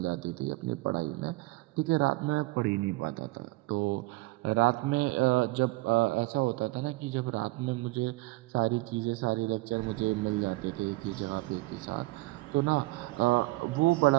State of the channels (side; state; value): left; quieter; 21.5 dB